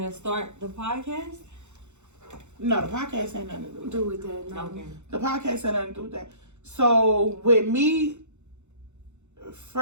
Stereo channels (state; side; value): late; left; 0.83 ms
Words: start the podcast? No, the podcast ain't nothing to do with that. No. Okay. The podcast ain't nothing to do with that. So with me,